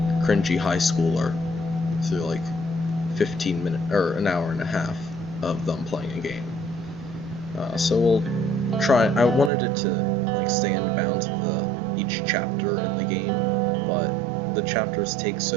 cringy high schooler through like 15 minutes or an hour and a half of them playing a game. So we'll try. I wanted it to like stay in bounds of each chapter in the game, but the chapters take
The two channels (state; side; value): drops out; left; at 9.5 s